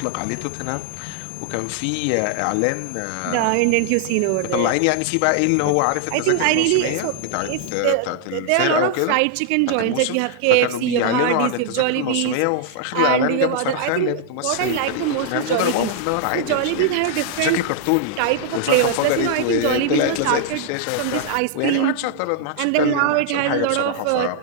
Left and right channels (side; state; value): both; different; correlation -0.01